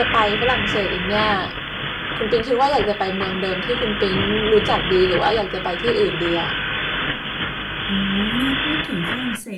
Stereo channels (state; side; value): identical; both; correlation 1.00